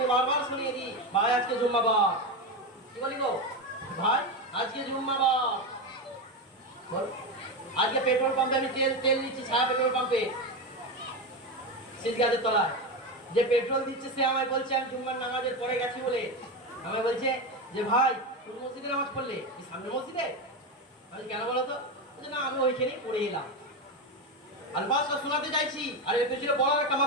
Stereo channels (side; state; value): both; normal; correlation 0.16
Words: বারবার শুনিয়ে দিই, ভাই আজকে জুম্মাবার। কি বলি গো ভাই, আজকে জুম্মাবার। আজকে পেট্রোল পাম্পে আমি তেল নিচ্ছি, ছায়া পেট্রোল পাম্পে শীত গাছের তলায় যে পেট্রোল দিচ্ছে, সে আমায় বলছে আমি জুম্মার নামাজের পরে গেছি বলে আমায় বলছে যে ভাই কোন মসজিদে নামাজ পড়লে? কি সামনে মসজিদে? আমি কেন বলো তো? না আমি ওইখানেই পড়ে এলাম। আলফাজটা শোনাতে চাইছি, আর এর পেছনে বলার একটা